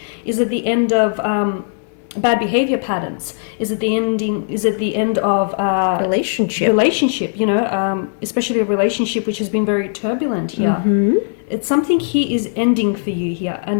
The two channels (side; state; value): right; silent; digital silence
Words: Is it the end of bad behavior patterns? Is it the end of relationship, you know, especially a relationship which has been very turbulent here? It's something here is ending for you here,